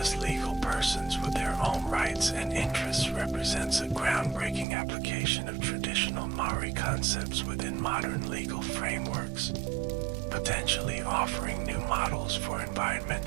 legal persons with their own rights and interests represents a groundbreaking application of traditional Maori concepts within modern legal frameworks, potentially offering new models for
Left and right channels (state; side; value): drops out; left; at 4.7 s